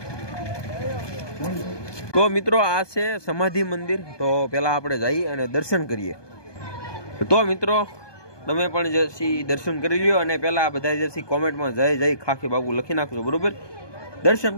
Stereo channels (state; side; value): late; right; 1.2 ms